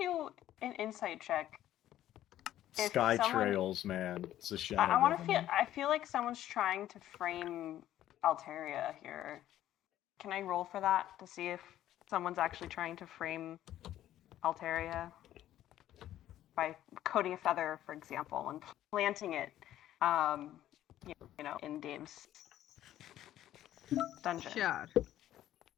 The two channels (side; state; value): right; quieter; 12.8 dB